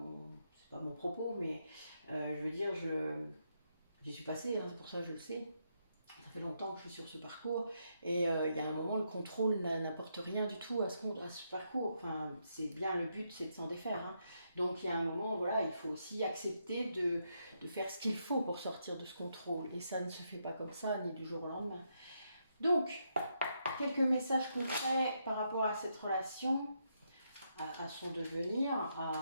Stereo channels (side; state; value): both; inverted; correlation -0.79